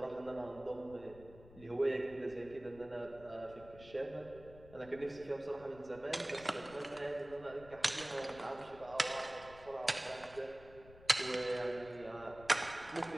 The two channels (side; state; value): left; noise; rumble, 19 dB below the sound